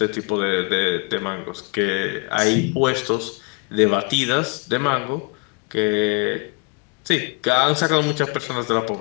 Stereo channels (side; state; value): right; quieter; 30.3 dB